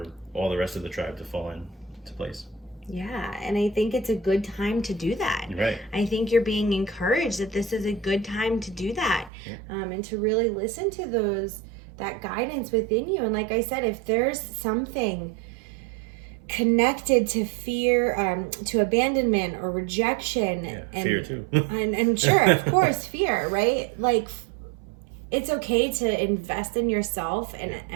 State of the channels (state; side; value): drops out; left; at 9.3 s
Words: all the rest of the tribe to fall into place. Yeah, and I think it's a good time to do that. Right. I think you're being encouraged that this is a good time to do that, and to really listen to that guidance within you. And like I said, if there's something connected to fear, to abandonment or rejection, and fear too, and sure, of course, fear, right? Like, it's okay to invest in yourself